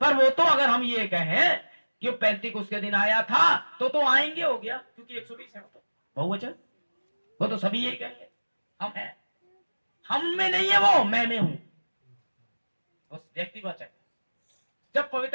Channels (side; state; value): both; inverted; correlation -1.00